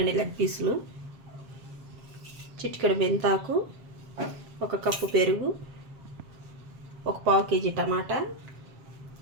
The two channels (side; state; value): left; late; 7.5 ms